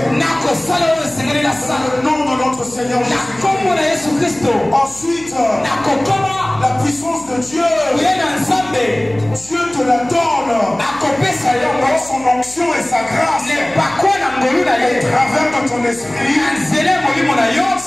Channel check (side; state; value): left; noise; hum, 24 dB below the sound